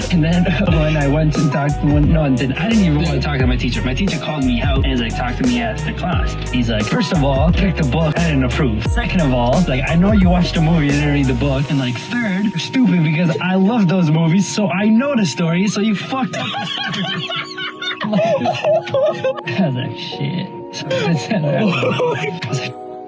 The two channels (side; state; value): both; identical; correlation 1.00